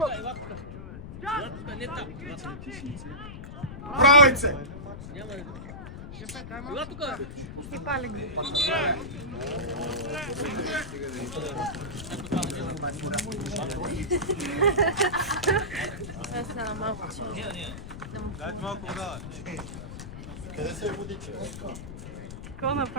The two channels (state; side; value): noise; left; rumble, 10 dB below the sound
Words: Не там. Правице! Ела тука. И пали ги. Аз стана малко чудо. Дайте малко вода. Къде се е водиче? Какво